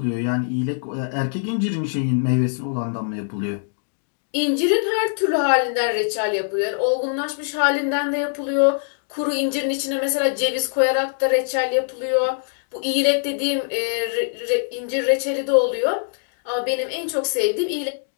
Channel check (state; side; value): silent; right; digital silence